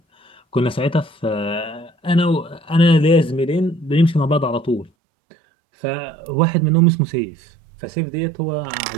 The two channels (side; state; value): left; drops out; at 4.9 s